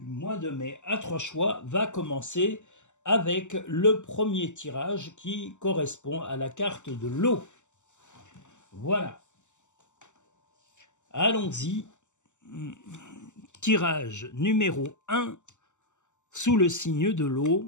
mois de mai à 3 choix va commencer avec le premier tirage qui correspond à la carte de l'eau. Voilà. Allons-y, tirage numéro 1 sous le signe de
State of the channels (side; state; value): right; late; 0.84 ms